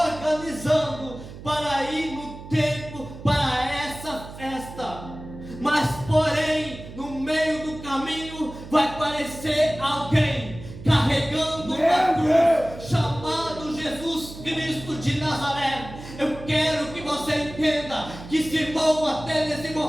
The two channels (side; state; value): right; noise; hum, 14 dB below the sound